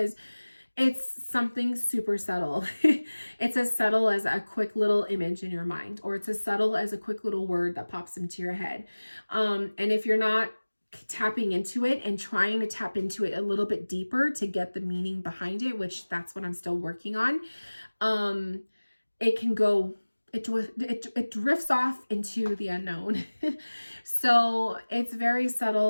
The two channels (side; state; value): both; inverted; correlation -1.00